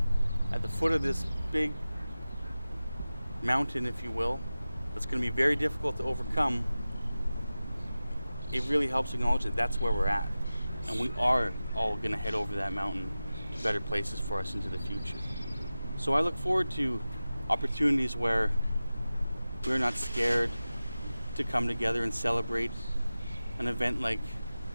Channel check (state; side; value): inverted; both; correlation -0.95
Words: at the foot of this big mountain, if you will, that's going to be very difficult to overcome, it really helps acknowledge that that's where we're at. And we are all going to head over that mountain to better places for us into the future. So I look forward to opportunities where we're not scared to come together and celebrate an event like